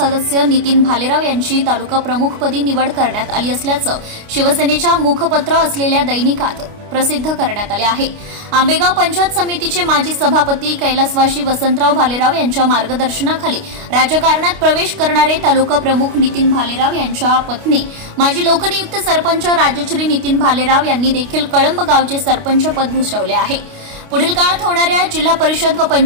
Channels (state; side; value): late; left; 29 ms